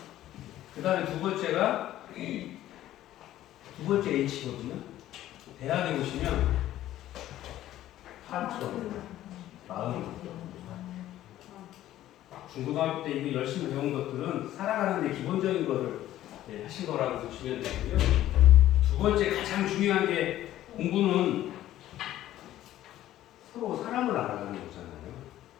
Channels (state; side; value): quieter; right; 13.5 dB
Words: 그다음에 두 번째 H거든요. 대학에 보시면 하트, 마음. 중고등학교 때 이거 열심히 배운 것들은 살아가는데 기본적인 거를 하신 거라고 보시면 되고요. 두 번째 가장 중요한 게 공부는 서로 사람을 알아가는 거잖아요.